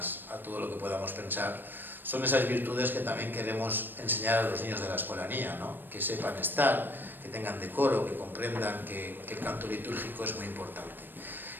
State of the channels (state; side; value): late; left; 0.094 ms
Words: a todo lo que podamos pensar. Son esas virtudes que también queremos enseñar a los niños de la Escolanía, ¿no? Que sepan estar, que tengan decoro, que comprendan que el canto litúrgico es muy importante.